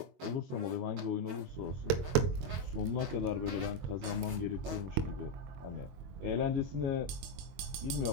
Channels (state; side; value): late; left; 22 ms